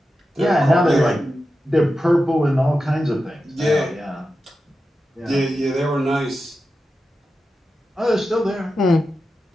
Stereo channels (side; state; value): both; normal; correlation 0.91